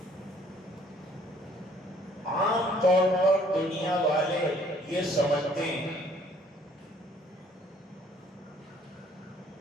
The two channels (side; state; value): both; normal; correlation 0.60